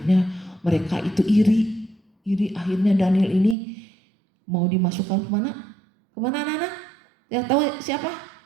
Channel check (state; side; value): drops out; left; at 3.6 s